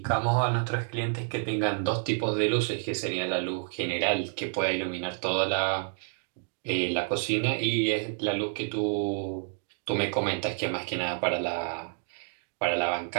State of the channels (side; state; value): left; silent; 58 dB below the other